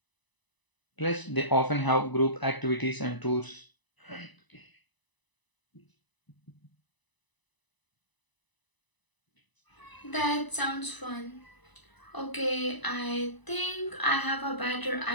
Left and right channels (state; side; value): late; right; 1.0 ms